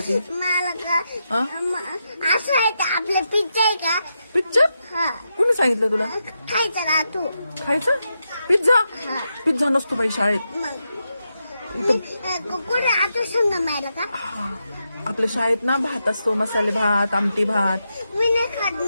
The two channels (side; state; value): both; inverted; correlation -0.86